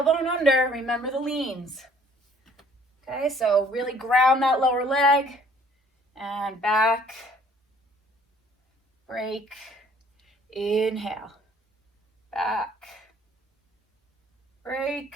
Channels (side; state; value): both; normal; correlation 0.58